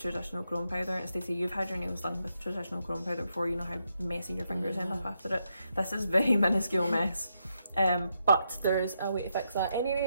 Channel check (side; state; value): both; inverted; correlation -0.82